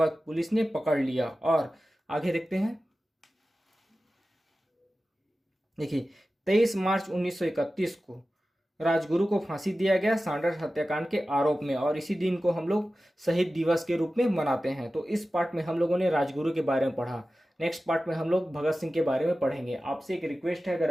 पुलिस ने पकड़ लिया। और आगे देखते हैं। देखिए, 23 मार्च 1931 को राजगुरु को फांसी दिया गया सैंडर्स हत्याकांड के आरोप में और इसी दिन को हम लोग शहीद दिवस के रूप में मनाते हैं। तो इस पार्ट में हम लोगों ने राजगुरु के बारे में पढ़ा। नेक्स्ट पार्ट में हम लोग भगत सिंह के बारे में पढ़ेंगे। आपसे एक रिक्वेस्ट है, अगर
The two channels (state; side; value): normal; both; correlation 0.95